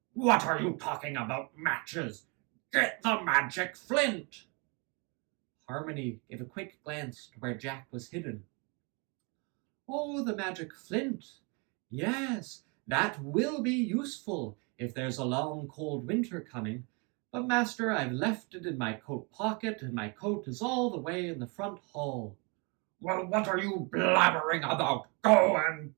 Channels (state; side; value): quieter; left; 32.0 dB